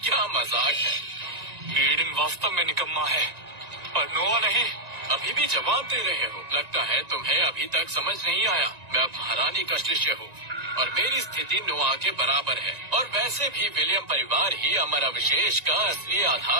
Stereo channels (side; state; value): left; late; 1.9 ms